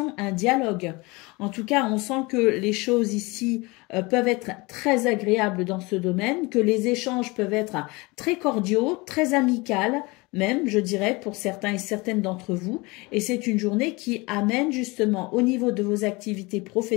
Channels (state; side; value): quieter; right; 24.9 dB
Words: un dialogue. En tout cas, on sent que les choses ici peuvent être très agréables dans ce domaine, que les échanges peuvent être très cordiaux, très amicales, même, je dirais, pour certains et certaines d'entre vous. Et c'est une journée qui amène justement au niveau de vos activités